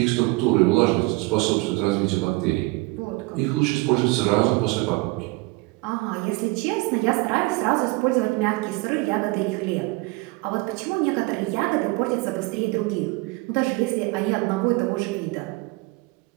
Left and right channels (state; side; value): quieter; left; 24.1 dB